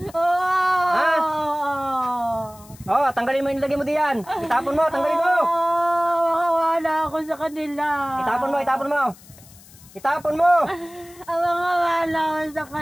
Oo! Ha? Oo, tanggalin mo yung nilagay mo diyan. Itapon mo, tanggalin mo. Makawala ako sa kanila. Itapon mo, itapon mo. Itapon mo. Makawala ako sa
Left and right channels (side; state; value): left; noise; hiss, 23 dB below the sound